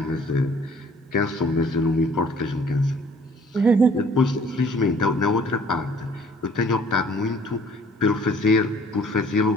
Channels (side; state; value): both; normal; correlation 0.56